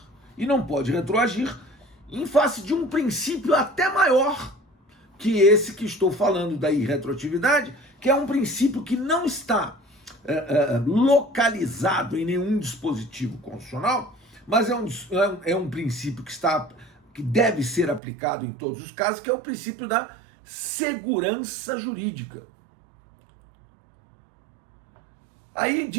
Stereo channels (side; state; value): left; drops out; at 18.0 s